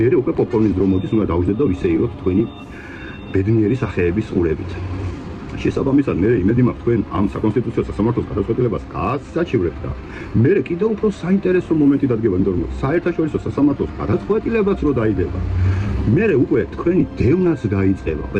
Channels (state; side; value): identical; both; correlation 1.00